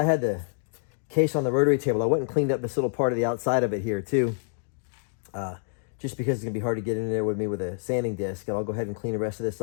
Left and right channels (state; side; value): silent; right; 60 dB below the other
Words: had the case on the rotary table. I went and cleaned up this little part of the outside of it here too. Just because it's gonna be hard to get in there with me with a sanding disc. And I'll go ahead and clean the rest of this